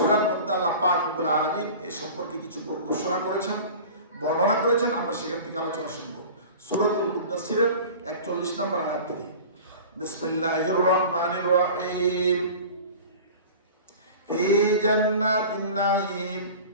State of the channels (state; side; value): inverted; both; correlation -0.38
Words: মধ্যে আল্লাহ পাক রব্বুল আলামিন এই সম্পর্কে কিছু ঘোষণা করেছেন, বর্ণনা করেছেন। আমরা সেখান থেকে আলোচনা শুনব। সূরাতুল মুদাসসিরের 41 নম্বর আয়াত থেকে। বিসমিল্লাহির রহমানির রহিম। ফি জান্নাতিন নাঈম